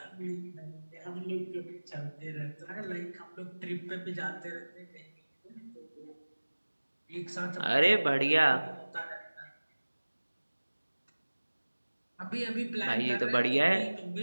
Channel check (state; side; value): inverted; both; correlation -1.00